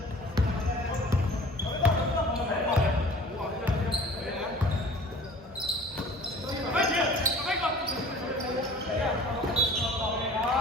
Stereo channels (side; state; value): both; normal; correlation 0.47